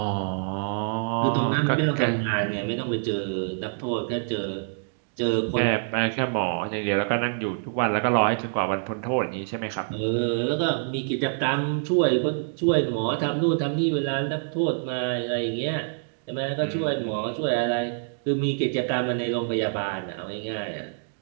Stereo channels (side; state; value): left; silent; digital silence